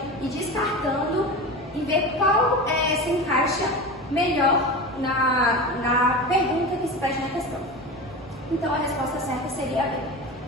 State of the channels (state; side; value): normal; both; correlation 0.28